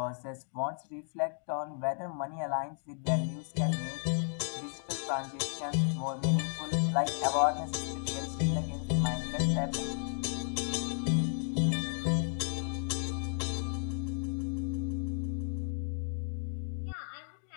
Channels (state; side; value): silent; right; 55 dB below the other